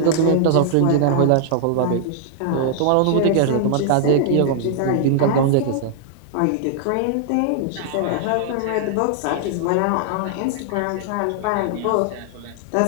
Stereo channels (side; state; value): both; different; correlation -0.01